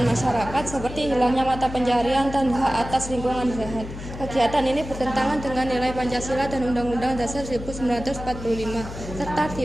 masyarakat seperti hilangnya mata pencaharian dan hak atas lingkungan sehat. Kegiatan ini bertentangan dengan nilai Pancasila dan Undang-Undang Dasar 1945 serta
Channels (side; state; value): left; noise; hum, 10 dB below the sound